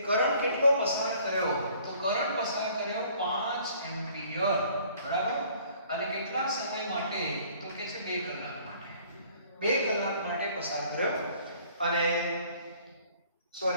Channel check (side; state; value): both; inverted; correlation -0.56